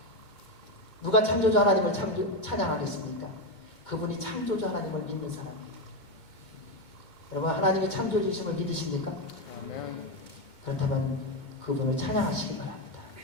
누가 창조주 하나님을 찬양하겠습니까? 그분이 창조주 하나님을 믿는 사람이에요. 여러분, 하나님이 창조주이심을 믿으십니까? 아멘. 그렇다면 그분을 찬양하시기 바랍니다.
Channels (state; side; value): late; right; 2.2 ms